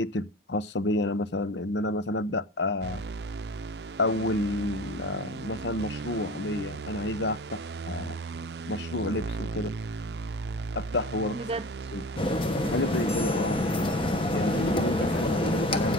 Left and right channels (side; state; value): both; normal; correlation 0.37